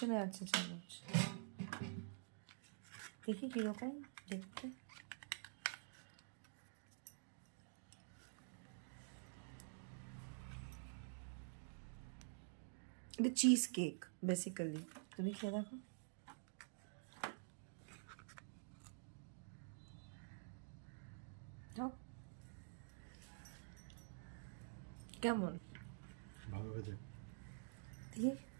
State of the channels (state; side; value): silent; left; digital silence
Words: আছে চামচ, দেখি কীরকম দেখতে। এটা চিজ কেক বেসিক্যালি। তুমি খেয়ে দেখো। কেমন? ভালো হয়েছে। দেখি।